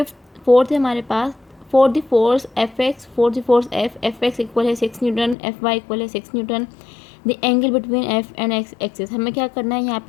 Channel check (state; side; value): drops out; right; at 5.4 s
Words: फोर्थ है हमारे पास, for the force F X, for the force F X equal है 6 न्यूटन, एफ वाई इक्वल है 6 newton, the angle between F and X axis. हमें क्या करना है, यहाँ